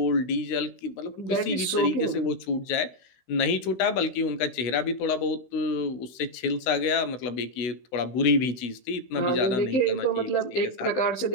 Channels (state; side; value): late; right; 16 ms